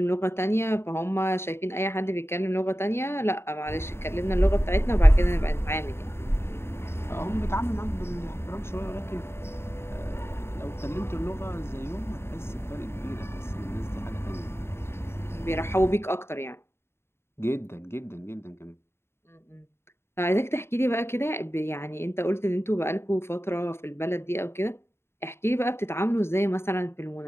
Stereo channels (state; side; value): late; right; 0.12 ms